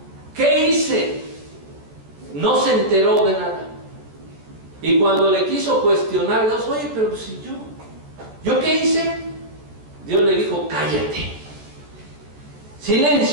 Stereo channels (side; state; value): left; late; 14 ms